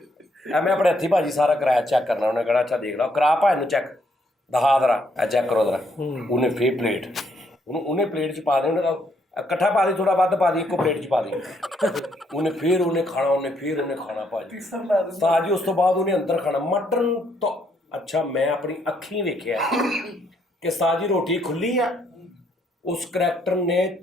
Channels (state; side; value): normal; both; correlation 0.72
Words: ਮੈਂ ਆਪਣੇ ਹੱਥੀਂ ਭਾਜੀ ਸਾਰਾ ਕਰਾਇਆ ਚੈੱਕ ਕਰਨਾ। ਉਹਨੇ ਕਹਿਣਾ ਅੱਛਾ ਦੇਖ ਲਾ ਕਰਾ ਭਾਈ ਨੂੰ ਚੈੱਕ ਦਿਖਾ ਜ਼ਰਾ ਇਹ ਚੈੱਕ ਕਰੋ ਜ਼ਰਾ। ਉਹਨੇ ਫੇਰ ਪਲੇਟ ਉਹਨੇ ਪਲੇਟ 'ਚ ਪਾ ਦੇ, ਉਹਨੇ ਇਕੱਠਾ ਪਾ ਦੀ, ਥੋੜਾ ਵੱਧ ਪਾ ਦੀ, ਇੱਕੋ ਪਲੇਟ 'ਚ ਪਾ ਦੀ। ਉਹਨੇ ਖਾਣਾ ਭਾਜੀ ਤਾਜੀ। ਉਸ ਤੋਂ ਬਾਅਦ ਉਹਨੇ ਅੰਦਰ ਖਾਣਾ ਮਟਨ ਤੋਂ। ਅੱਛਾ ਮੈਂ ਆਪਣੀ ਅੱਖੀਂ ਵੇਖਿਆ ਕਿ ਸਾਜੀ ਰੋਟੀ ਖੁੱਲੀ ਆ। ਉਸ ਕਰੈਕਟਰ ਨੇ